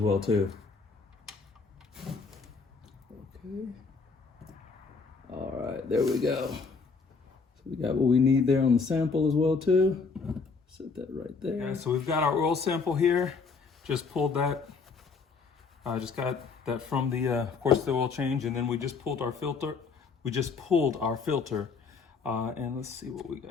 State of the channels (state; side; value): quieter; right; 4.8 dB